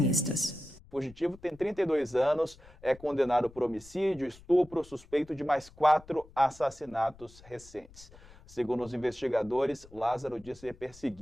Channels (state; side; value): noise; left; rumble, 22 dB below the sound